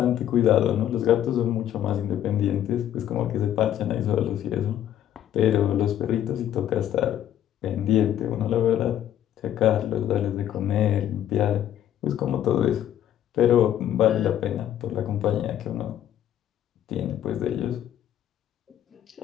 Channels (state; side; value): quieter; right; 11.1 dB